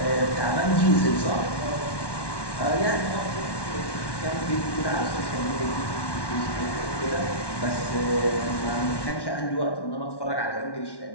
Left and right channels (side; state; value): right; late; 1.1 ms